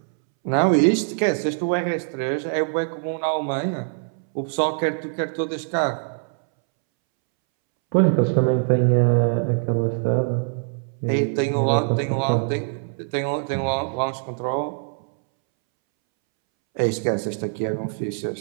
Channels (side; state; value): left; silent; 63 dB below the other